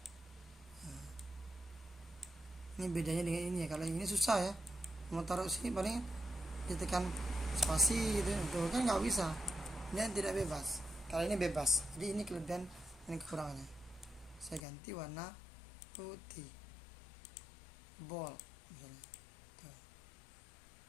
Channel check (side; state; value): right; drops out; at 14.6 s